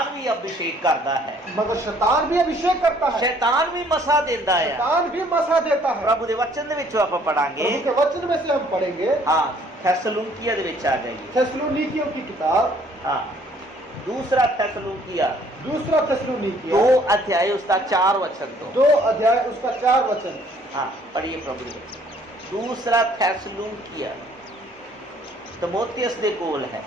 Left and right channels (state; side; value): normal; both; correlation 0.60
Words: भी अभिषेक करता है, मगर शैतान भी अभिषेक करता है, शैतान भी मसा देता है। शैतान भी मसा देता है। प्रभु दे वचन दे विचों ਆਪਾਂ पढ़ांगे। प्रभु के वचन में से हम पढ़ेंगे। हाँ, थेसलुनिकिया दे विच आ जाइए। थेसलोनिकियों की किताब, हाँ, दूसरा थेसलुनिकिया, दूसरा थेसलोनिकिया 2 अध्याय उसका 4 वचन तो 2 अध्याय उसका 4 वचन। हाँ पढ़िए प्रभु दे वचन। दूसरा थेसलुनिकिया तमोथियस दे कोल है,